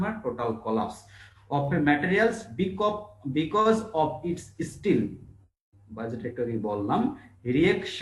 মানে total collapse of a materials because of its steel, বা যেটা একটু আগে বললাম,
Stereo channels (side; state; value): both; identical; correlation 1.00